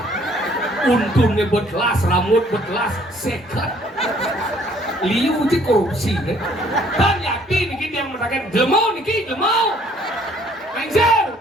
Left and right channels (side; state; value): both; normal; correlation 0.61